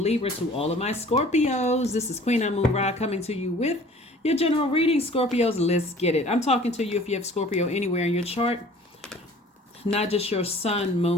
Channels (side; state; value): both; normal; correlation 0.49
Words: Libra to all of my Scorpios. This is Queen on Moon Ra coming to you with your general reading. Scorpios, let's get it. I'm talking to you if you have Scorpio anywhere in your chart, not just your sun,